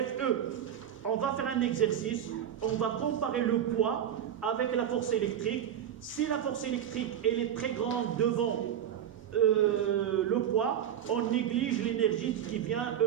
On va faire un exercice. On va comparer le poids avec la force électrique. Si la force électrique elle est très grande devant le poids, on néglige l'énergie qui vient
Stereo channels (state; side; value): quieter; left; 9.7 dB